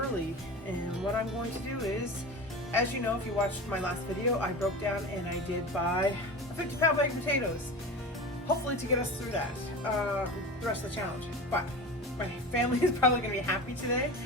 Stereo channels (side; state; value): both; normal; correlation 0.31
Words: and what I'm going to do is, as you know, if you watched my last video, I broke down and I did buy a 50-pound bag of potatoes, hopefully to get us through that, the rest of the challenge. But my family is probably going to be happy today,